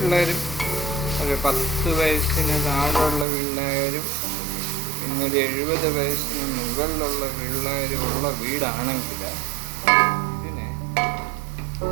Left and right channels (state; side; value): drops out; left; at 3.2 s